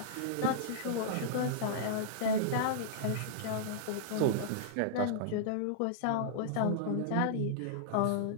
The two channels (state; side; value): different; both; correlation -0.02